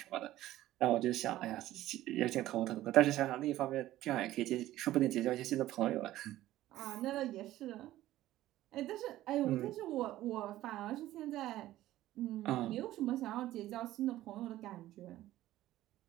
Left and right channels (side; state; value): left; quieter; 14.8 dB